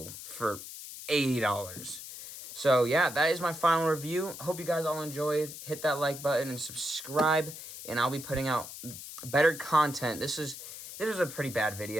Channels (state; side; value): noise; left; hiss, 11 dB below the sound